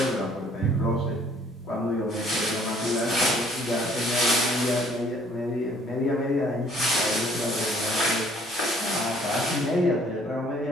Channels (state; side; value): normal; both; correlation 0.59